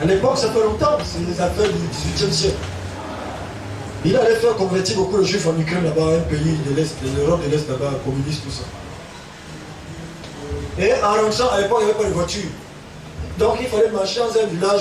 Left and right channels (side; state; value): both; identical; correlation 1.00